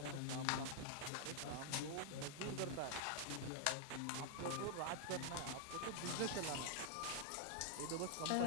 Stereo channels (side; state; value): both; different; correlation 0.00